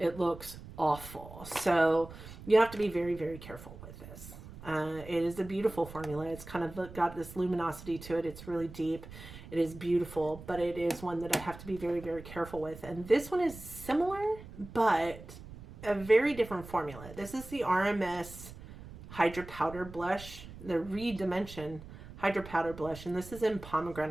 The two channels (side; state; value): right; noise; rumble, 15 dB below the sound